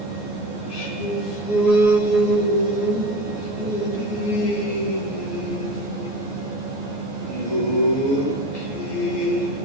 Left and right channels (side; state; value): left; late; 14 ms